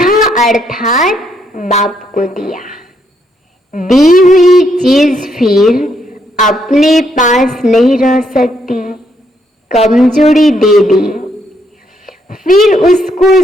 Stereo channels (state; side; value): normal; both; correlation 0.74